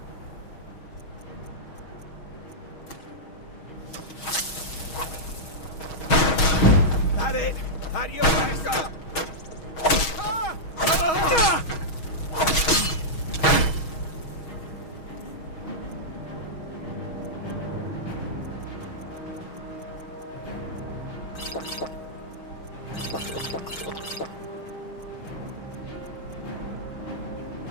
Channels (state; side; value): late; right; 6.3 ms